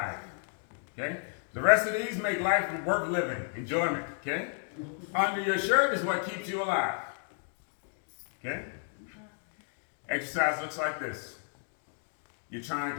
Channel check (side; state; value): right; silent; 56 dB below the other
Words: Okay? The rest of these make life worth living, enjoyment. Okay? Under your shirt is what keeps you alive. Okay? Exercise looks like this. You're trying